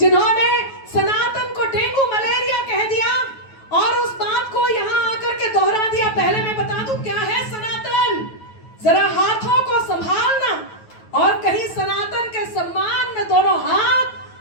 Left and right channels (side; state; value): right; late; 9.3 ms